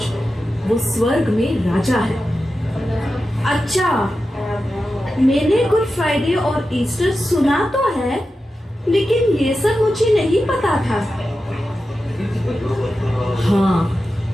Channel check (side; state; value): both; normal; correlation 0.92